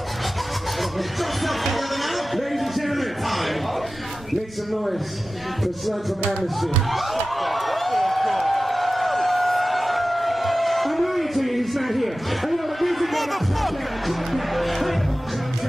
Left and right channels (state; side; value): normal; both; correlation 0.95